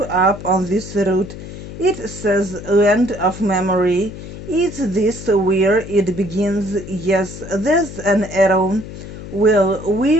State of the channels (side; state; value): left; noise; hum, 12 dB below the sound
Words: up on this root. It says land of memory. Is this where it begins? Yes, there's an arrow. Well,